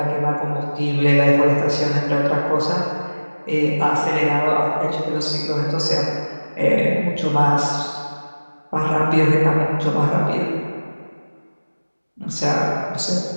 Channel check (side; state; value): both; inverted; correlation -1.00